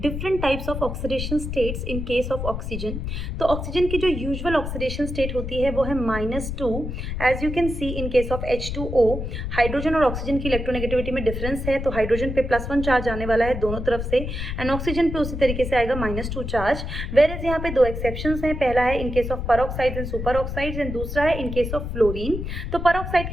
different types of oxidation states in case of oxygen. तो oxygen की जो usual oxidation state होती है वो है -2. As you can see in case of H2O, hydrogen और oxygen की इलेक्ट्रोनेगेटिविटी में डिफरेंस है, तो हाइड्रोजन पे +1 चार्ज आने वाला है दोनों तरफ से, एंड ऑक्सीजन पे उसी तरीके से आएगा -2 चार्ज. वेर एज यहाँ पे दो एक्सेप्शंस हैं. पहला है in case of peroxides and super oxides, and दूसरा है इन केस ऑफ फ्लोरीन. तो परऑक्साइड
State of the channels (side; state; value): left; noise; rumble, 5 dB below the sound